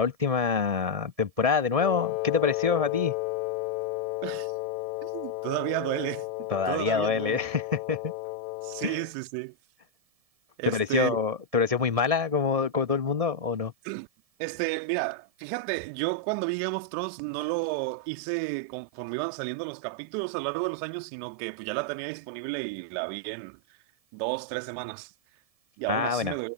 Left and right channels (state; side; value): late; left; 1.7 ms